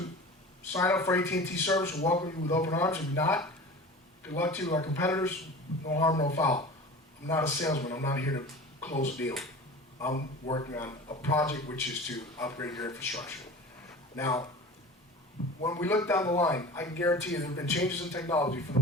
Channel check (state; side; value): normal; both; correlation 0.37